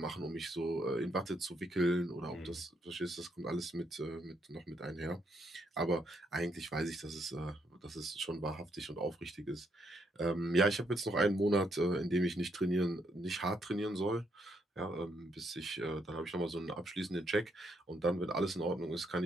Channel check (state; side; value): normal; both; correlation 0.75